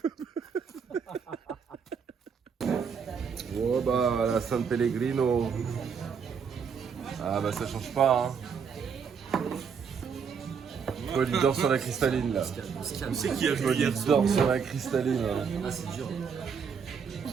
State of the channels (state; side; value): quieter; left; 6.5 dB